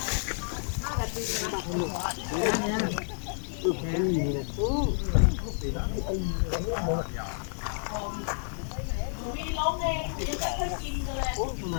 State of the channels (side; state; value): right; silent; digital silence